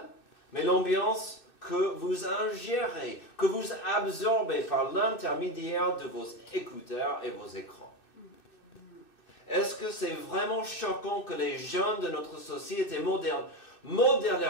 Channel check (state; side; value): late; right; 2.6 ms